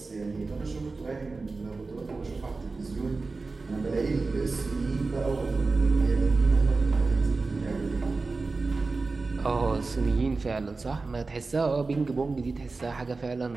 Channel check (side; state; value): left; quieter; 3.9 dB